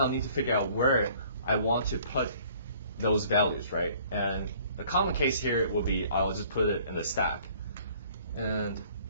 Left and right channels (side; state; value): both; inverted; correlation -0.55